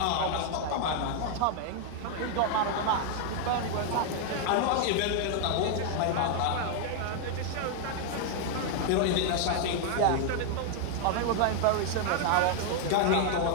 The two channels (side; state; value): both; different; correlation 0.00